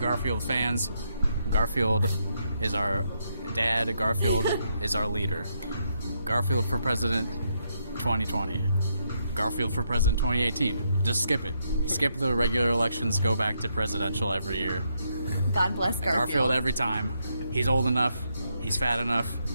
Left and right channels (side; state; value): both; inverted; correlation -0.78